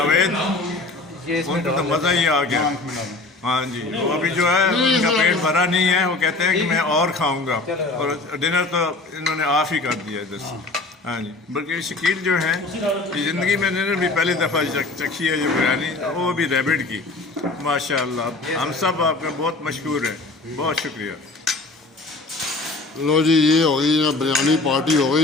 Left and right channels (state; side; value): quieter; right; 3.3 dB